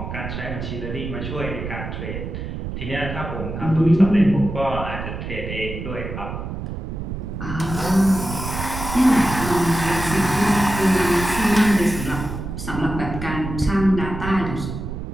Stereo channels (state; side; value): noise; right; rumble, 7 dB below the sound